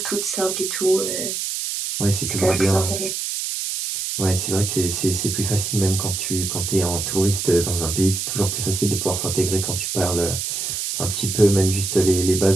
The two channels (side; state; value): right; noise; hiss, 3 dB below the sound